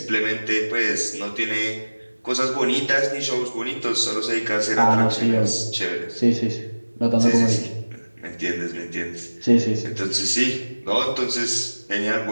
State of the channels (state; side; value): inverted; both; correlation -1.00